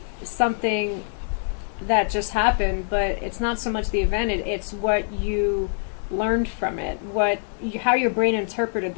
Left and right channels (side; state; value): right; silent; digital silence